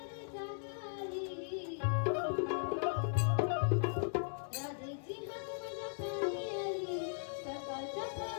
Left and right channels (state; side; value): silent; right; digital silence